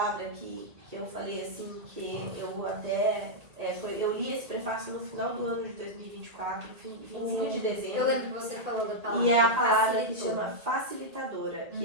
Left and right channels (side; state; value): left; late; 1.8 ms